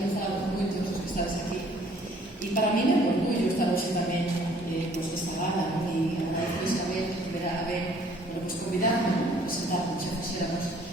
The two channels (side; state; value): both; normal; correlation 0.58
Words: nos fala con moitos dos que estades aquí. E para mí é un orgullo estar hoxe tamén pues, desta gala, ¿no? E agradezo Isabel que verá a ver, bueno, pues convidarme a presentar, xa fixéramos